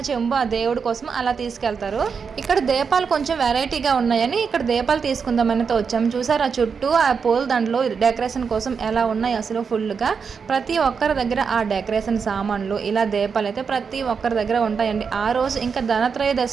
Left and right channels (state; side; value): quieter; left; 5.9 dB